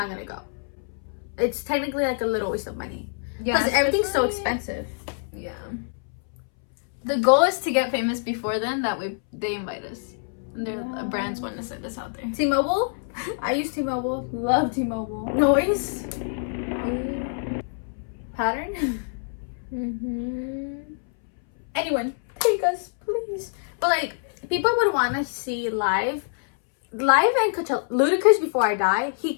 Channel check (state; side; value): silent; right; 61 dB below the other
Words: gonna go. It's technically like a little waste of money. Yeah, Because everything's so especially- expensive. Yeah. The goal is to get famous before then. That way they invite us. And their brands want to send us out there. T-Mobile? I use T-Mobile. Love T-Mobile. Noise? Pattern? Anyone, take us, please. But like, people would want to see live and Coachella. Ludacris, before I die, he